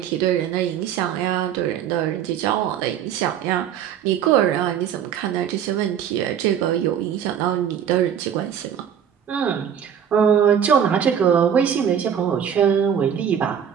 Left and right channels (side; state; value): left; quieter; 8.7 dB